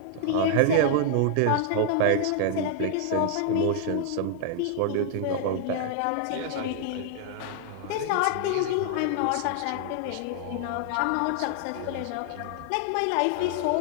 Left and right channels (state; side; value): different; both; correlation 0.00